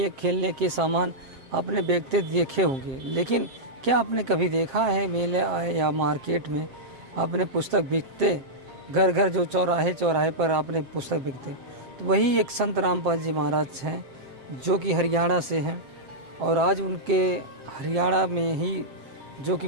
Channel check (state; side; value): late; left; 7.6 ms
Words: खेलने के सामान आपने बेचते देखे होंगे, लेकिन क्या आपने कभी देखा है मेले या मार्केट में आपने पुस्तक बिकते? घर घर जो चौराहे चौराहे पर आपने पुस्तक बिकते, तो वही एक संत रामपाल जी महाराज हैं जो कि हरियाणा से हैं। और आज उनके हरियाणा में ही जो कि